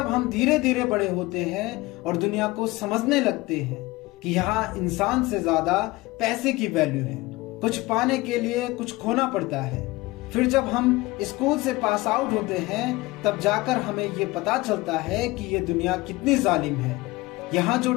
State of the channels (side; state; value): right; quieter; 20.8 dB